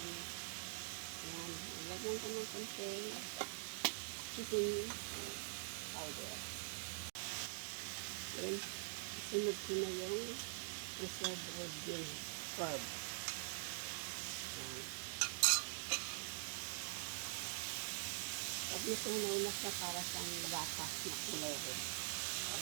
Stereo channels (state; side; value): silent; left; digital silence